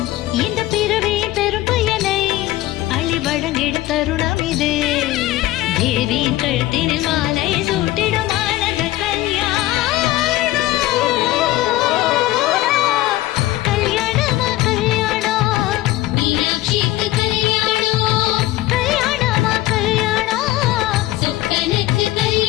இந்த பிறவியின் பெரும் பயனை அள்ளி வழங்கிடும் தருணம் இது. தேவியின் கழுத்தினில் மாலை சூட்டிடும் ஆனந்த கல்யாணம். கல்யாணமா கல்யாணம், மீனாட்சிக்கு கல்யாணம், கல்யாணமா கல்யாணம், சொக்கனுக்கு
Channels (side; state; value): right; quieter; 16.3 dB